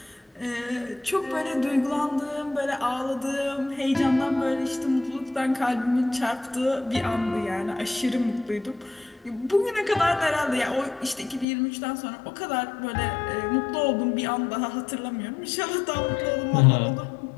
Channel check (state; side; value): drops out; right; at 11.5 s